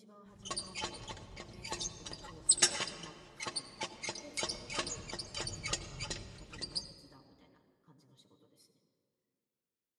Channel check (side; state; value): both; identical; correlation 1.00